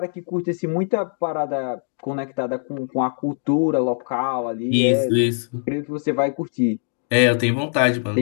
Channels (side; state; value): right; silent; digital silence